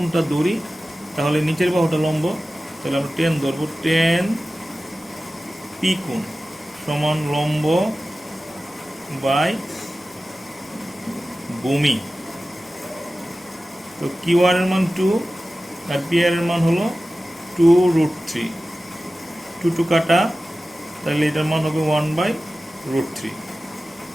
ধরি, তাহলে নিচের বাহুটা লম্ব, তাহলে আমরা টেন ধরবো। টেন পি কোণ সমান লম্ব বাই ভূমি। তো কিউ আর এর মান 2 আর পি আর এর মান হলো 2√3। 2 কাটা, তাহলে এটার মান হবে 1/√3।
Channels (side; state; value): both; normal; correlation 0.95